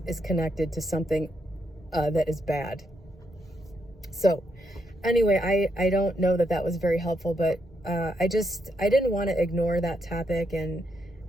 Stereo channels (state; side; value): normal; both; correlation 0.79